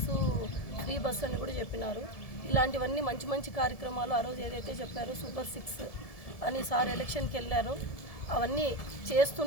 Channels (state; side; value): late; right; 1.7 ms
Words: ఫ్రీ బస్సు అని కూడా చెప్పినారు. ఇలాంటివన్నీ మంచి మంచి కార్యక్రమాలు ఆ రోజు ఏదైతే చెప్పారో సూపర్ 6 అని సార్ ఎలక్షన్కి వెళ్ళారు, అవన్నీ